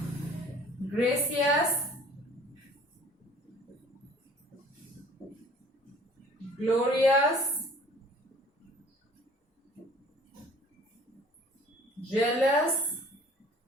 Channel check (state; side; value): normal; both; correlation 0.51